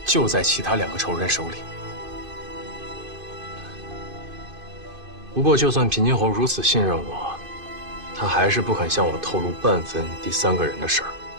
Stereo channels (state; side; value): late; left; 2.5 ms